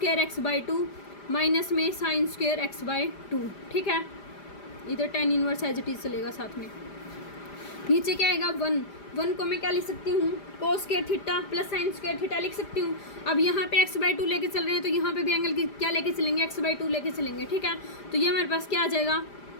x/2 माइनस में साइन स्क्वायर x/2, ठीक है। इधर tan inverse as it is चलेगा साथ में। नीचे क्या आएगा 1 को मैं क्या लिख सकती हूँ cos square theta plus sine square theta लिख सकती हूँ। अब यहाँ पे x/2 लेके चल रहे हैं तो यहाँ पे भी एंगल की क्या लेके चलेंगे x/2 लेके चलेंगे, ठीक है। तो ये हमारे पास क्या आ जाएगा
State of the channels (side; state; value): right; late; 5.0 ms